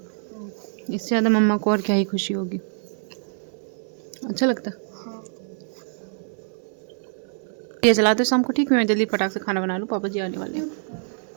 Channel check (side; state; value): left; silent; 62 dB below the other